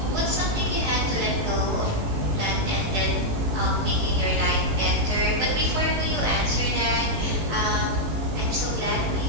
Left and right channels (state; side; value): late; left; 18 ms